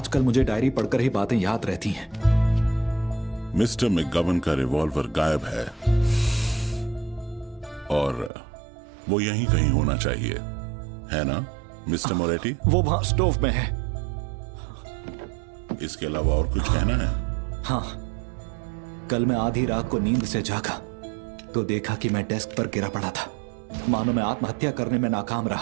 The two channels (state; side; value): drops out; left; at 8.3 s